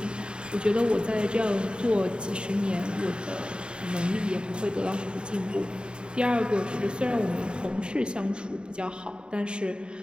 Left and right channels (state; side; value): late; left; 0.051 ms